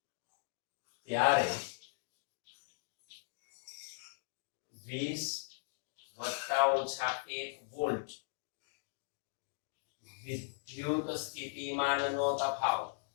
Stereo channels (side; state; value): right; silent; digital silence